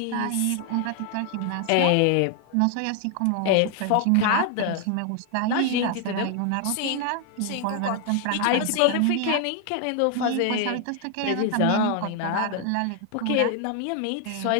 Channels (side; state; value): both; different; correlation 0.00